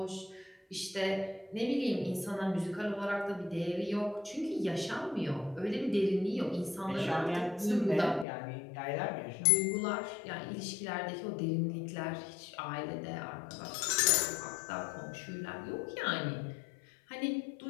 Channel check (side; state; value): right; drops out; at 8.2 s